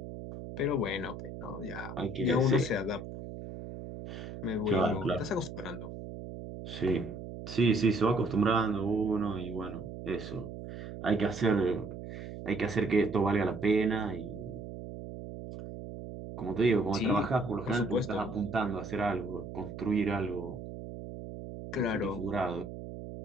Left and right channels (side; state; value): right; noise; hum, 10 dB below the sound